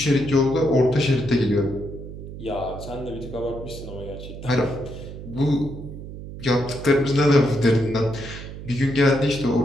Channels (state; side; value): noise; right; hum, 11 dB below the sound